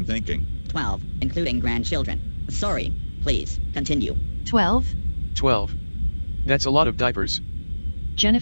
thinking. 12, including grandchildren. Sorry, please, continue. 12? 12. That's a lot of diapers.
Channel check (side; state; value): both; inverted; correlation -1.00